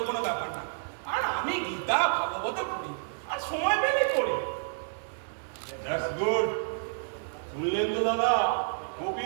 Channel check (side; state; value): left; silent; digital silence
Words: কোনো ব্যাপার না। আর আমি গীতা ভাগবত পড়ি, আর সময় পেলেই পড়ি। That's good. শুনলেন তো দাদা,